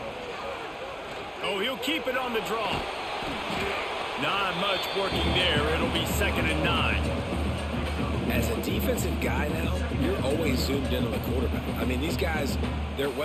Oh, he'll keep it on the draw. Not much working there. It'll be 2nd and 9. As a defensive guy now, you're always zoomed in on the quarterback. I mean, these guys,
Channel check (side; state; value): both; identical; correlation 1.00